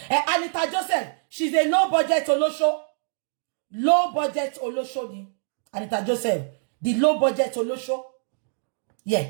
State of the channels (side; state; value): left; silent; digital silence